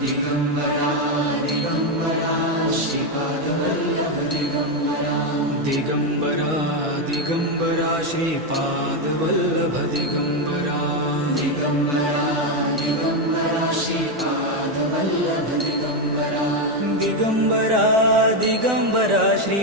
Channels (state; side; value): normal; both; correlation 0.06